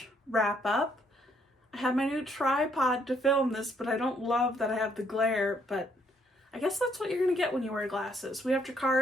wrap up. I have my new tripod to film this, but I don't love that I have the glare, but I guess that's what you're gonna get when you wear glasses. We have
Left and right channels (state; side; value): normal; both; correlation 0.69